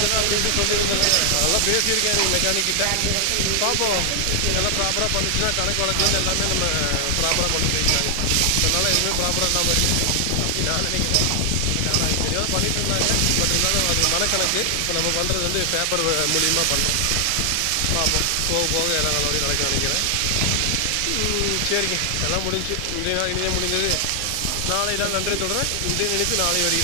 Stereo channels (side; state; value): both; different; correlation 0.00